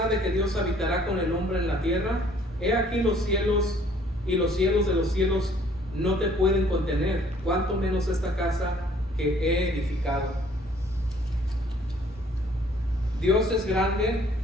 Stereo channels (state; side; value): normal; both; correlation 0.59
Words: de que Dios habitará con el hombre en la tierra. He aquí los cielos y los cielos de los cielos no te pueden contener, cuanto menos esta casa que he edificado. Dios es grande